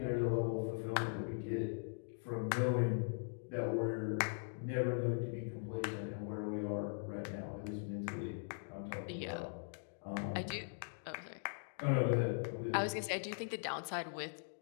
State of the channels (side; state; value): right; silent; digital silence